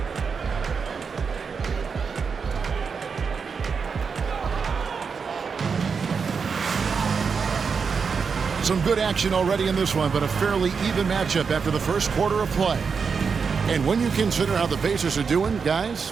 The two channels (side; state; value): left; quieter; 5.6 dB